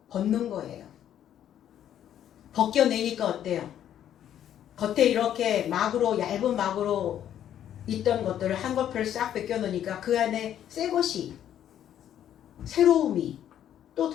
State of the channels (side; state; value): right; quieter; 10.5 dB